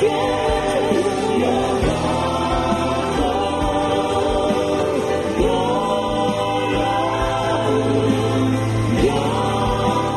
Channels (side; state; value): both; identical; correlation 1.00